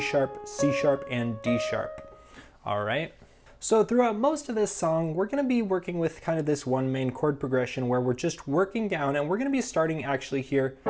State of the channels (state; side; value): identical; both; correlation 1.00